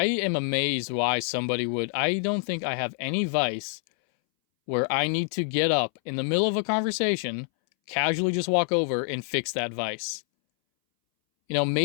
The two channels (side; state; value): right; silent; 61 dB below the other